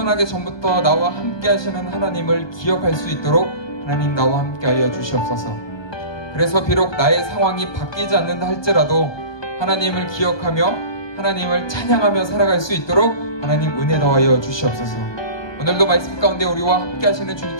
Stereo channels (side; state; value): right; late; 1.2 ms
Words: 전부터 나와 함께 하시는 하나님을 기억할 수 있도록 하나님 나와 함께 하여 주시옵소서. 그래서 비록 나의 상황이 바뀌지 않는다 할지라도 하나님을 기억하며 하나님을 찬양하며 살아갈 수 있도록 하나님 은혜 더하여 주시옵소서. 오늘도 말씀 가운데 우리와 함께 하시는